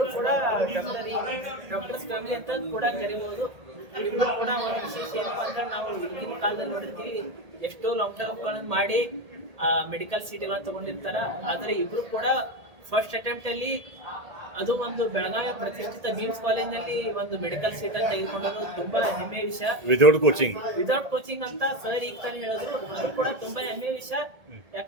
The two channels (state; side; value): late; left; 1.8 ms